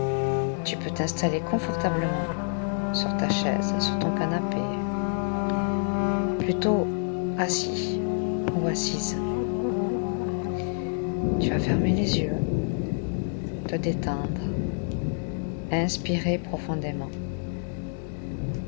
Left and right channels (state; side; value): silent; right; 60 dB below the other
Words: tu peux t'installer confortablement sur ta chaise, sur ton canapé, plutôt assis ou assise. Tu vas fermer les yeux, te détendre, inspirer profondément